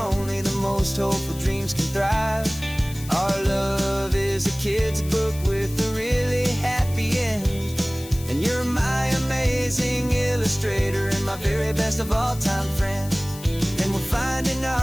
the most hopeful dreams can thrive. Our love is a kid's book with a really happy end, and you're my amazing illustrator and my very best of all time friend. And we're finding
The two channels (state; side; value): noise; left; hiss, 15 dB below the sound